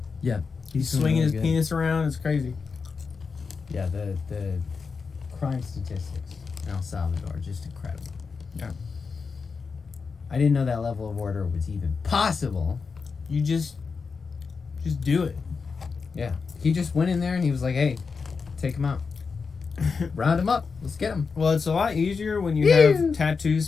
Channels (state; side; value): quieter; right; 5.1 dB